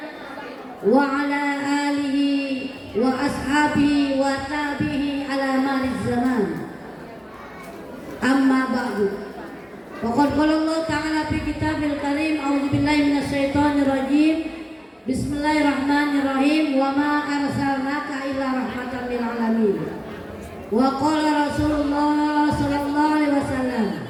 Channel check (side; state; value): both; identical; correlation 1.00